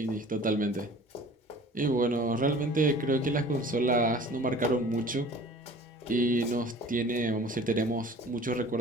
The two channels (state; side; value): normal; both; correlation 0.45